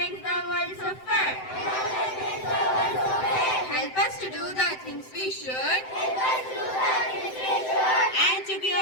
the world so fair. Help us to do the things we should, and to be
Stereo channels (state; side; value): late; right; 7.8 ms